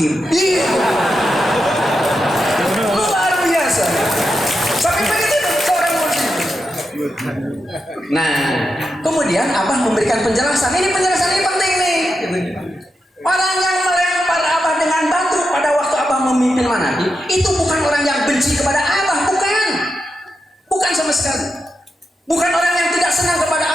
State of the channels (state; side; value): normal; both; correlation 0.87